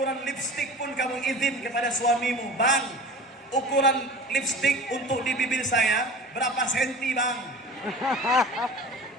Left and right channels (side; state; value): both; normal; correlation 0.37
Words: lipstik pun kamu izin kepada suamimu. Bang, ukuran lipstik untuk di bibir saya berapa senti, Bang?